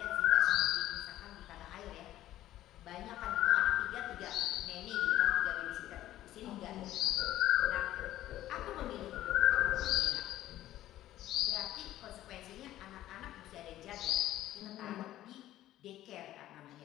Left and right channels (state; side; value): quieter; right; 13.9 dB